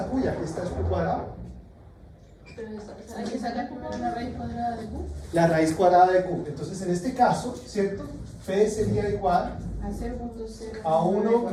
Q y aquí está Q cuadrado. Hay que sacar la raíz cuadrada de Q La raíz cuadrada de Q. Entonces, en este caso, ¿cierto? P sería igual a 0,0 a 1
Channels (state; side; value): identical; both; correlation 1.00